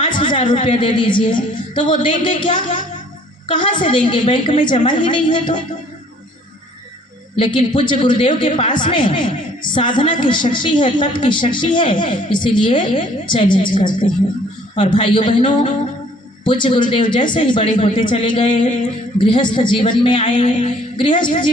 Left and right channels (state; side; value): normal; both; correlation 0.58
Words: रुपया दे दीजिए, तो वो देंगे क्या? कहाँ से देंगे? बैंक में जमा ही नहीं है तो। लेकिन पूज्य गुरुदेव के पास में साधना की शक्ति है, तप की शक्ति है, इसीलिए चैलेंज करते हैं। और भाइयों बहनों, पूज्य गुरुदेव जैसे ही बड़े होते चले गए, गृहस्थ जीवन में आए, गृहस्थ